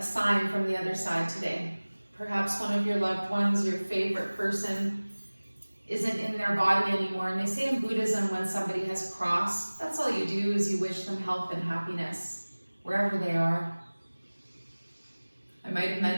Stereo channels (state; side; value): inverted; both; correlation -1.00